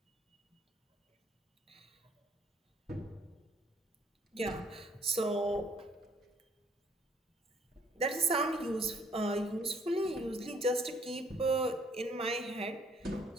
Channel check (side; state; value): both; normal; correlation 0.63